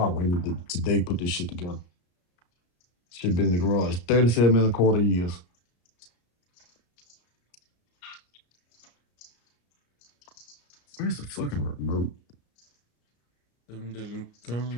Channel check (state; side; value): late; right; 34 ms